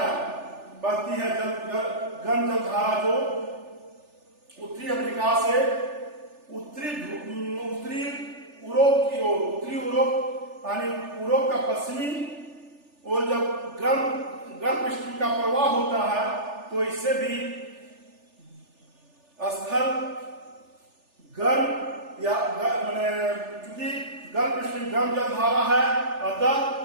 बहती है, गर्म जलधारा जो उत्तरी अमेरिका से उत्तरी यूरोप की ओर, उत्तरी यूरोप यानी यूरोप का पश्चिमी और जब गर्म स्ट्रीम का प्रवाह होता है, तो इससे भी स्थल गर्म या चूंकि गर्म स्ट्रीम गर्म जलधारा है, अतः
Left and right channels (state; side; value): late; left; 3.4 ms